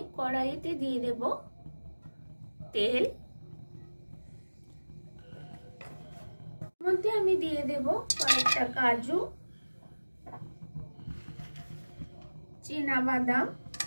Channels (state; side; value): inverted; both; correlation -1.00